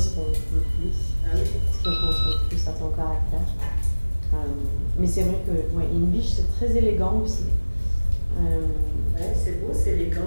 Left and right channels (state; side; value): inverted; both; correlation -1.00